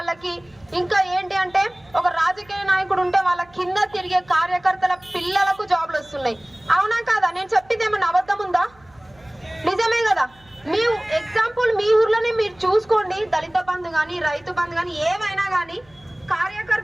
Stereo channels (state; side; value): noise; right; hum, 30 dB below the sound